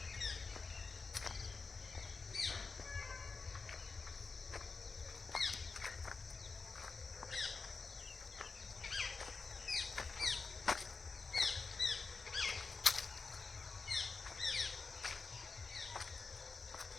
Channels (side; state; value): right; quieter; 4.4 dB